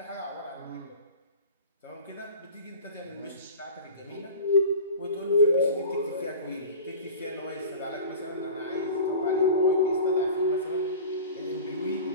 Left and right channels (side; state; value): both; inverted; correlation -0.37